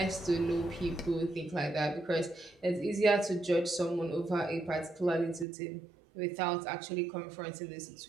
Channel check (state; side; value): drops out; left; at 5.5 s